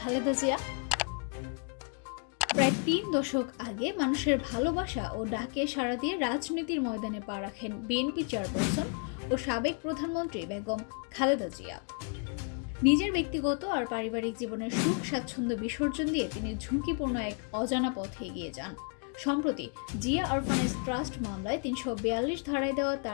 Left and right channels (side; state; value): right; quieter; 39.1 dB